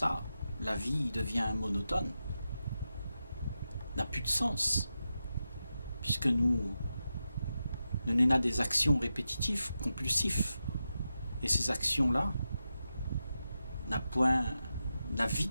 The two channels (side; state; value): both; inverted; correlation -0.90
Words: la vie devient monotone, n'a plus de sens, puisque nous n'avons des actions répétitives, compulsives. Et ces actions-là n'a point la vie